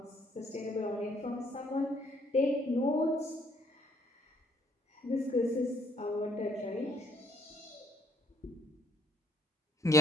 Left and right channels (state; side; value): normal; both; correlation 0.66